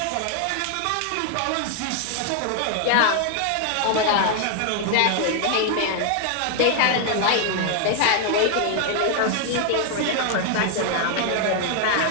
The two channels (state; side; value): different; both; correlation 0.00